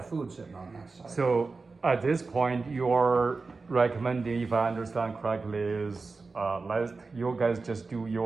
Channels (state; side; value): quieter; left; 4.1 dB